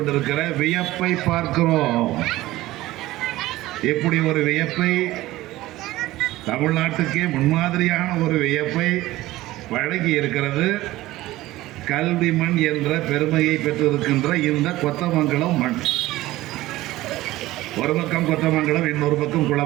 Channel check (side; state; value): left; quieter; 17.0 dB